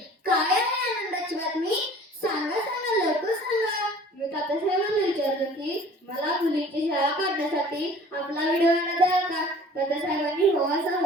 काय आहे आनंदाची बातमी? सांगा सांगा, लवकर सांगा. मी तात्यासाहेबांना विचारलं की मला मुलीची शाळा काढण्यासाठी आपला व्हिडिओ द्याल का? तात्यासाहेबांनी हो असा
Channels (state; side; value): normal; both; correlation 0.48